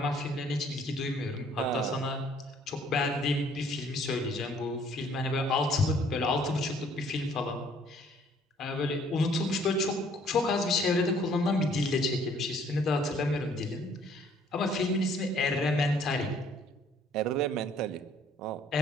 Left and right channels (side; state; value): both; normal; correlation 0.60